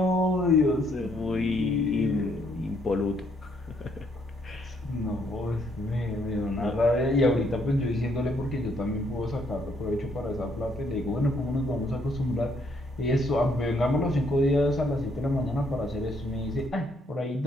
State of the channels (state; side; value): normal; both; correlation 0.70